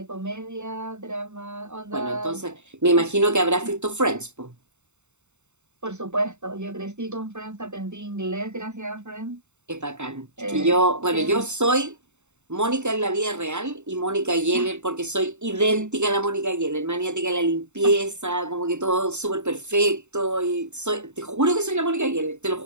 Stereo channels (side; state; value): left; late; 0.83 ms